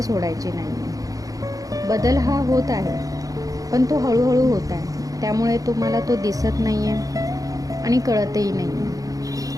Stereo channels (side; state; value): left; late; 0.17 ms